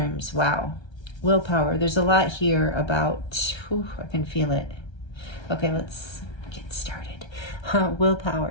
wow. Willpower, there's a lot here about, I can feel it. Okay, let's get started.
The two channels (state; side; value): late; right; 1.3 ms